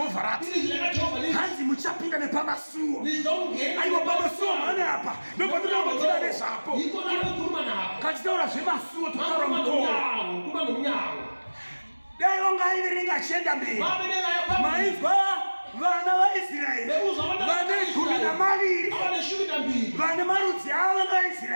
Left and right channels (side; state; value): both; inverted; correlation -1.00